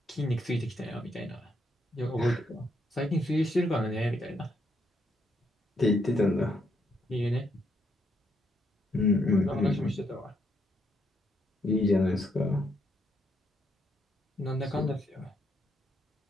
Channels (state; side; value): normal; both; correlation 0.76